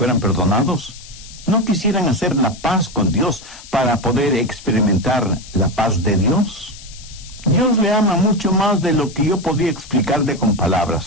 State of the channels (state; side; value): noise; left; hiss, 18 dB below the sound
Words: perdonados? ¿No quisieran hacer la paz con Dios para poder experimentar la paz de Dios? Dios le ama mucho más de lo que yo podría explicarle con